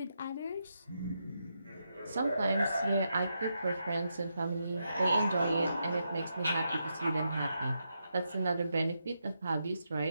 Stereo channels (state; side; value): inverted; both; correlation -0.84